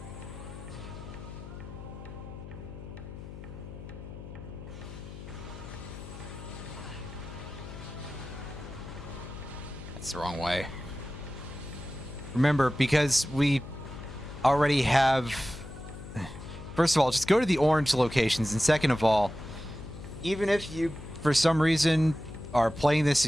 That's the wrong way. Remember, because we already have... First of all, just go to the orange locations, and second of all, even if you, for some reason, are playing this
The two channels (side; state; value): left; noise; hum, 12 dB below the sound